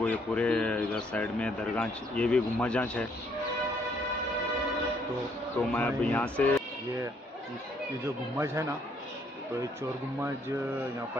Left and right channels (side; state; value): both; normal; correlation 0.68